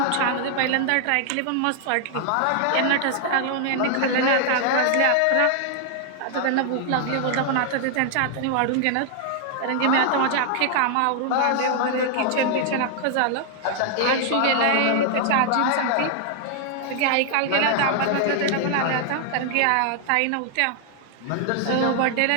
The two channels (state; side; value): different; both; correlation 0.00